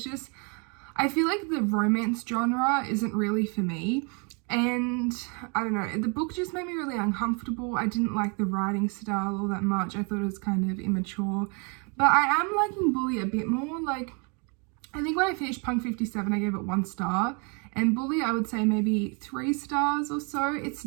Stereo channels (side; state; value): left; quieter; 34.7 dB